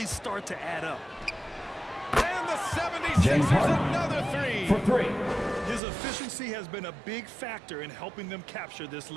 start to add up. James Harden. Another three. For three. His efficiency has been a big factor in helping them capture this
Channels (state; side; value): drops out; left; at 5.8 s